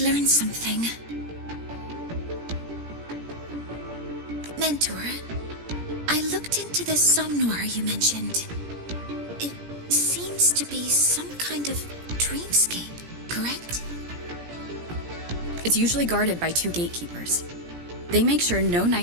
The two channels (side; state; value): left; late; 17 ms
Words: learn something. Mentor, I looked into the somnoir you mentioned. It seems to be some kind of dreamscape, correct? It's usually guarded by two gatekeepers. They make sure no